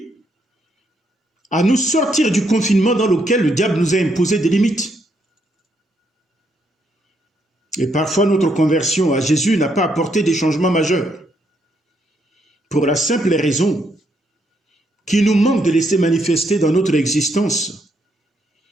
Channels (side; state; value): both; normal; correlation 0.75